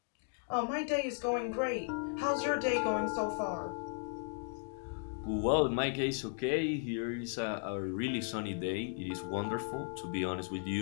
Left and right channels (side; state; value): right; silent; digital silence